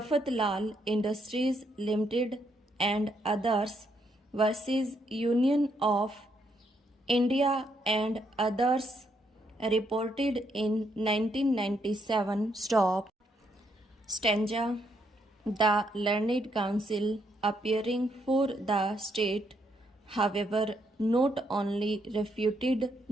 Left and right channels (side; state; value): both; normal; correlation 0.75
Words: Industries Limited and others versus Union of India and others, reported in 1997. Stop. Stanza. The learned counsel appearing for the state, however, not only refuted